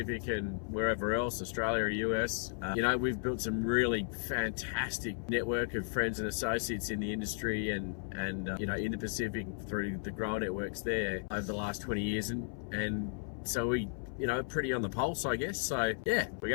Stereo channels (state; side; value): silent; right; 55 dB below the other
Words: and wherever else, Australia or US. You know, we've built some really fantastic network of friends and associates in the industry and you know, in the Pacific through the grower networks there over the last 20 years, and so we, you know, pretty on the pulse, I guess. So yeah, we're